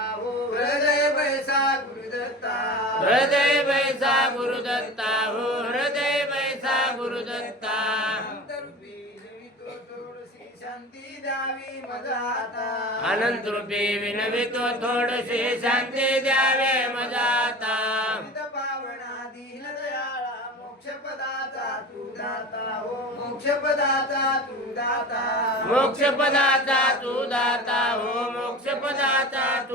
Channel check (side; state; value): both; normal; correlation 0.34